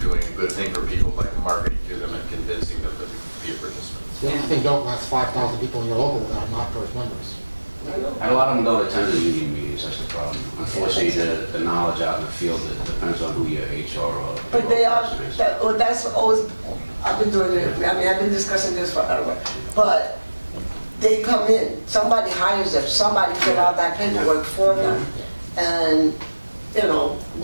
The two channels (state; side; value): inverted; both; correlation -1.00